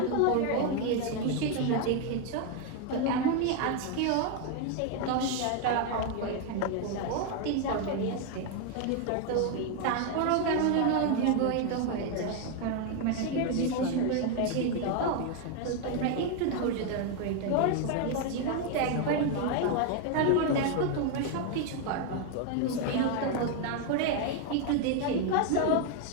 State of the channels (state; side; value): different; both; correlation 0.01